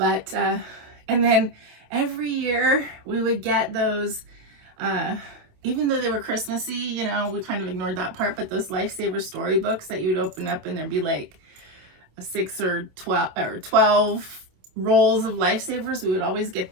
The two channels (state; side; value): late; left; 27 ms